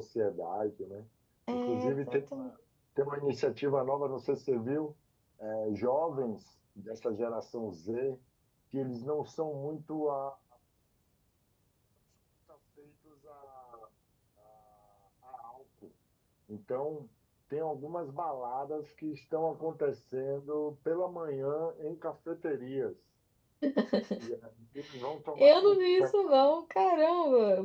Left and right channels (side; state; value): both; identical; correlation 1.00